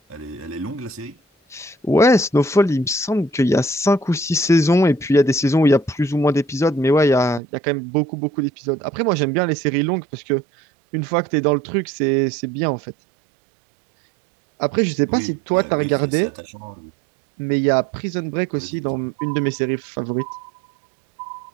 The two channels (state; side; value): drops out; left; at 7.4 s